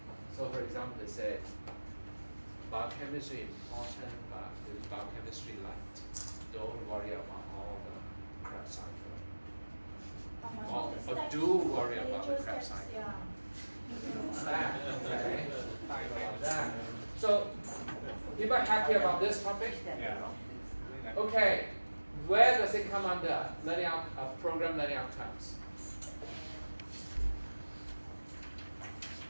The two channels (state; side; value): inverted; both; correlation -1.00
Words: So for example, they said biochemistry important, but the biochemistry light. Don't worry about all the crap cycle. Or do worry about the crap cycle. Yeah. That, okay. That. So people are happy about this topic? Yeah. Okay, where does it come under learning program learning outcomes?